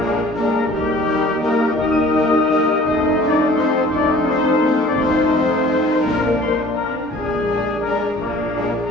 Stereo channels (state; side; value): normal; both; correlation 0.51